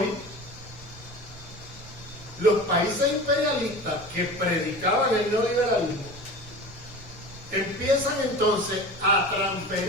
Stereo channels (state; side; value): noise; right; rumble, 21 dB below the sound